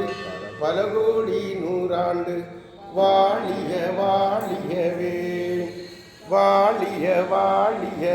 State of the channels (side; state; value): both; identical; correlation 1.00